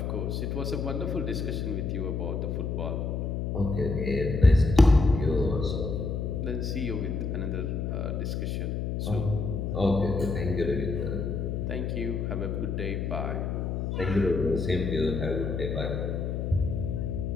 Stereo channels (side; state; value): left; noise; hum, 1 dB below the sound